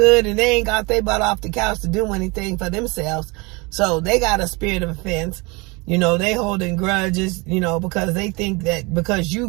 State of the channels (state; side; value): quieter; left; 26.7 dB